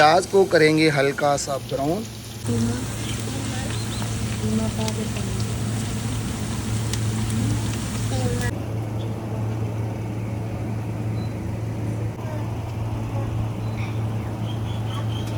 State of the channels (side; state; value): both; identical; correlation 1.00